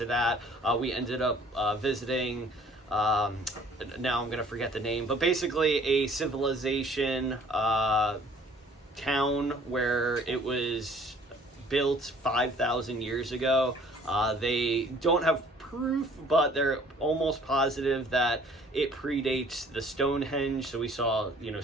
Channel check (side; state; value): both; normal; correlation 0.55